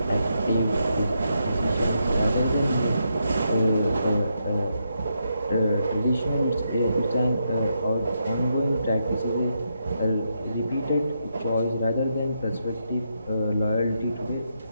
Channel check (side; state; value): both; inverted; correlation -0.81